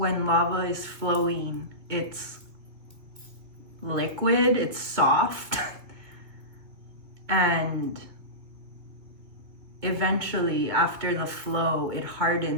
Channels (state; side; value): late; left; 2.2 ms